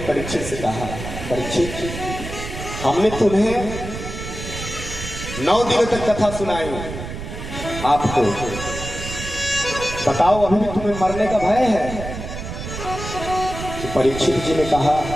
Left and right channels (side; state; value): right; noise; rumble, 8 dB below the sound